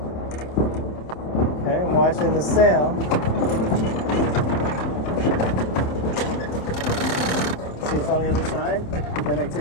Okay, I'm watching the sail. See, it's on the other side. Then I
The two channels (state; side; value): late; right; 27 ms